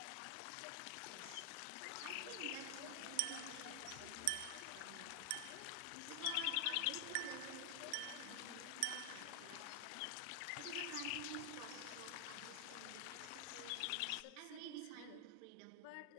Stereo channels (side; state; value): both; different; correlation 0.00